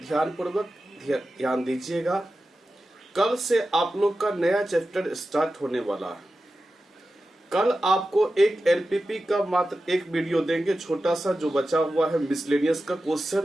ध्यानपूर्वक ध्यान दीजिएगा। कल से आप लोग का नया चैप्टर स्टार्ट होने वाला है। कल आपको एक एलपीपी का मात्र एक वीडियो देंगे, छोटा सा जो बचा हुआ है मिसलेनियस का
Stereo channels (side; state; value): both; normal; correlation 0.93